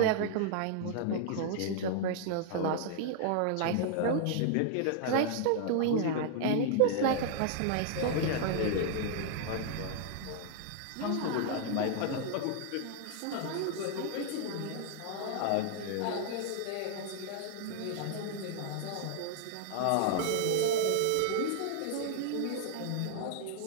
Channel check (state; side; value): different; both; correlation 0.00